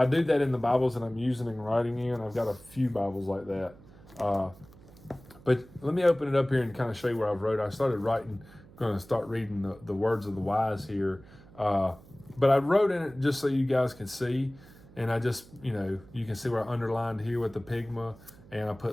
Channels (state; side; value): noise; right; hum, 22 dB below the sound